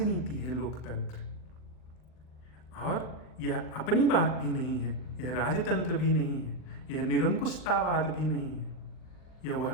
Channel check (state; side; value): late; right; 40 ms